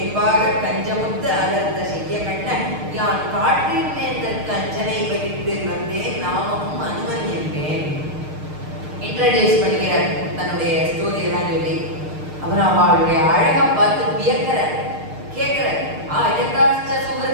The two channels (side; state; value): left; late; 6.5 ms